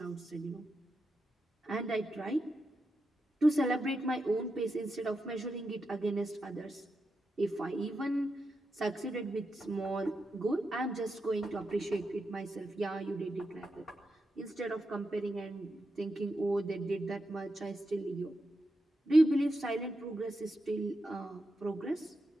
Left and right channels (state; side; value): normal; both; correlation 0.87